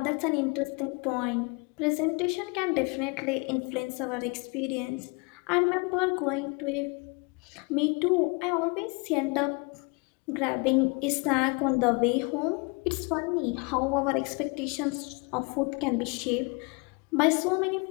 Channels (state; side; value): quieter; right; 30.8 dB